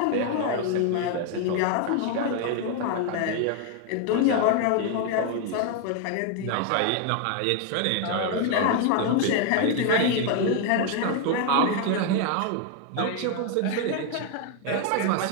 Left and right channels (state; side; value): different; both; correlation 0.01